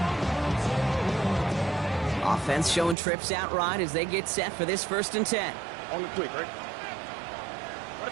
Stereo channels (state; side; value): drops out; left; at 3.0 s